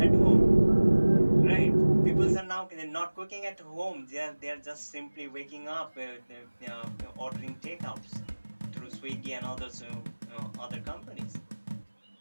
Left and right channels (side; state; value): both; inverted; correlation -1.00